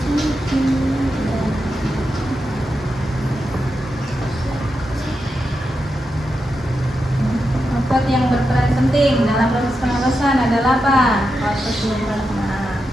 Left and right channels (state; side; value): normal; both; correlation 0.87